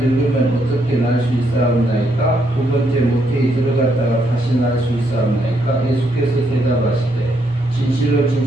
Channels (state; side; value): normal; both; correlation 0.75